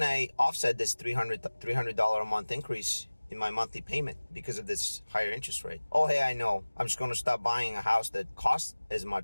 I offset this $300 a month increase in my monthly payment because of this higher interest rate? Oh, hey, I know. I'm just going to stop buying a house that costs as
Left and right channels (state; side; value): inverted; both; correlation -1.00